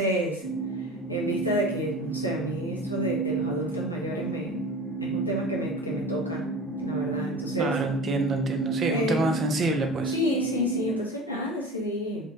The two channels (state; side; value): normal; both; correlation 0.35